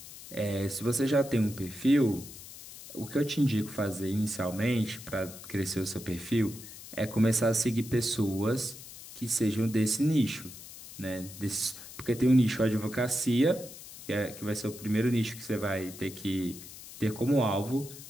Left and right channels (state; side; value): noise; left; hiss, 15 dB below the sound